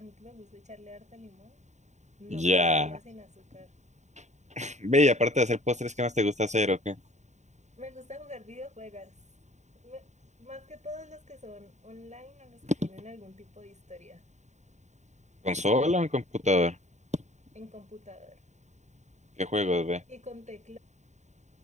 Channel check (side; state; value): left; late; 0.34 ms